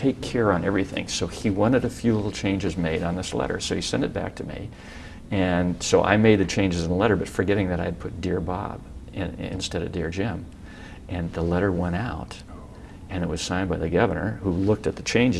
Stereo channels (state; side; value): identical; both; correlation 1.00